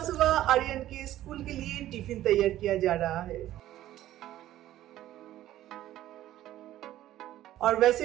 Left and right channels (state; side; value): quieter; left; 13.7 dB